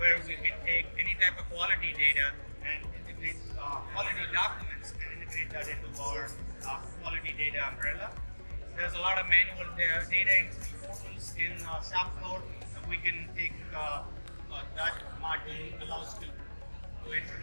we can take any type of quality data and integrate quality documents and integrate that into our quality data umbrella. There's a lot of manual data entry portals in shop floor. We can take that module allows to enter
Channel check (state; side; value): inverted; both; correlation -1.00